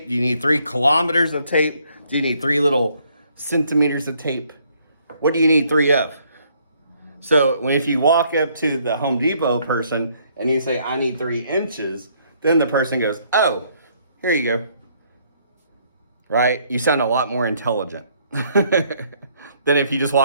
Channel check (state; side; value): inverted; both; correlation -0.67